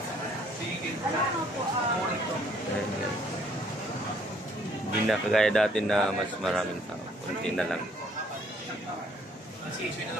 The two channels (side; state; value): both; normal; correlation 0.63